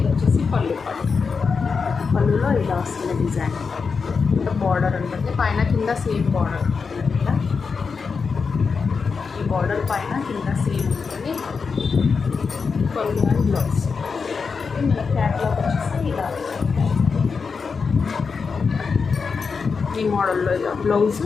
ఇది వచ్చేసి పళ్ళు పార్ట్. పళ్ళులో ఇలా వస్తుంది డిజైన్. ఇంకా బార్డర్ ఉంటుంది, పైన కింద సేమ్ బార్డర్ ఉంటుంది. ఇలా ఈ బార్డర్ పైన కింద సేమ్ ఉంటుంది. పళ్ళు అండ్ బ్లౌజ్. మన క్యాట్లాగ్ వచ్చేసి ఇలా ఈ మోడల్లో ఇలా బ్లౌజ్,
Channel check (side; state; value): right; quieter; 5.2 dB